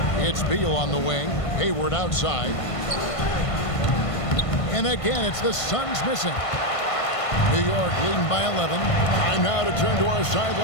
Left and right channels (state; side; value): late; right; 1.5 ms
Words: It's Beal on the wing. Hayward outside. And again, it's the Suns missing. New York leading by 11. Time now to turn to our